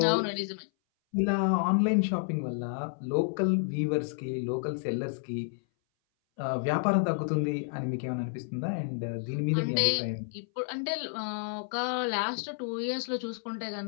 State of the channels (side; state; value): right; silent; 58 dB below the other